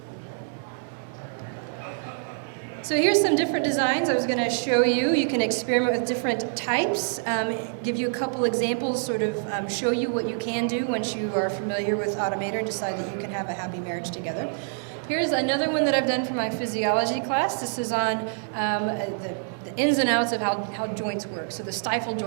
So here's some different designs I was going to show you. You can experiment with different types, give you a couple examples, sort of show you what you can do once you are familiar with Automator and decide that you can have a happy marriage together. Here's another one that I've done for my physiology class. This is on the ins and outs of how joints work. So the stifle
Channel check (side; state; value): left; silent; digital silence